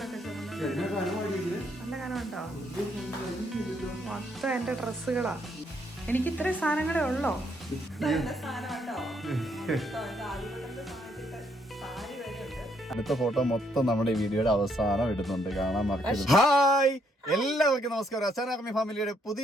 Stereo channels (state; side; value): normal; both; correlation 0.72